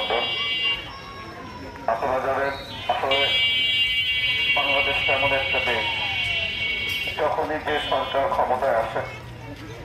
আপনারা জানেন, আসলে বাংলাদেশ এমন একটা দেশ, যখনই যে সরকার ক্ষমতায় আসে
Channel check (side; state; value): both; identical; correlation 1.00